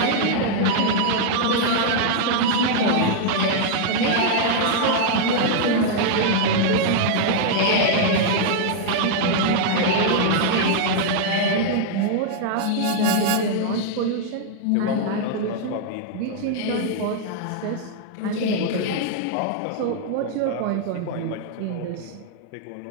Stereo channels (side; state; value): both; different; correlation -0.01